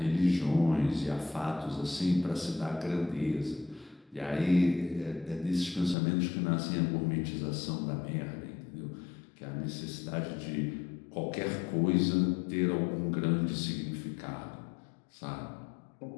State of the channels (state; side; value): drops out; right; at 6.0 s